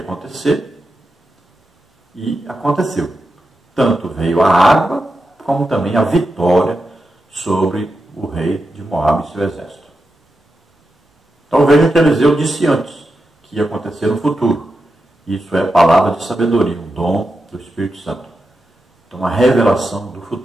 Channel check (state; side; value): normal; both; correlation 0.88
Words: acontecer, e aconteceu. Tanto veio a água, como também a vitória sobre o rei de Moabe e seu exército. Então veja que Eliseu disse antes que ia acontecer no futuro. Isso é palavra de sabedoria, um dom do Espírito Santo. Então uma revelação do